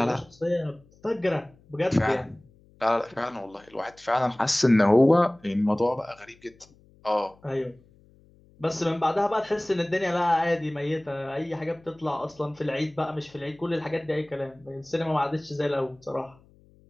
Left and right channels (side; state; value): left; noise; hum, 29 dB below the sound